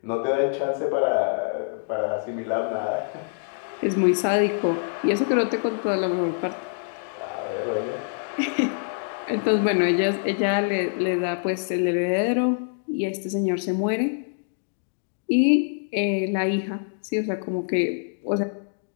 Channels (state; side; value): silent; right; digital silence